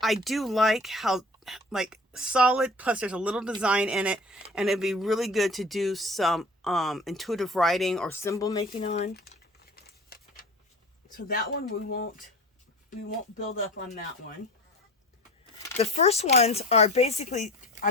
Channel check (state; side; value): normal; both; correlation 0.40